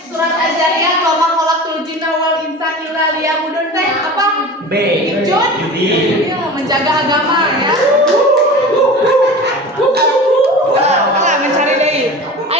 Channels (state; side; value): normal; both; correlation 0.35